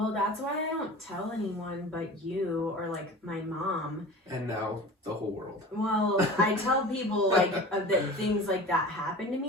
that's why I don't tell anyone but you or like my mom. And now the whole world. Well, I tell people like that things like that happen to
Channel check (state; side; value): normal; both; correlation 0.37